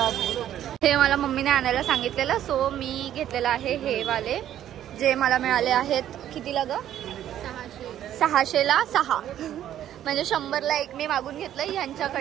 हे मला मम्मीने आणायला सांगितलेलं. सो मी घेतलेलं आहे हे वाले, जे मला मिळाले आहेत. कितीला ग? 600ला 6. म्हणजे 100ला 1 मी मागून घेतलं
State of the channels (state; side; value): quieter; left; 11.4 dB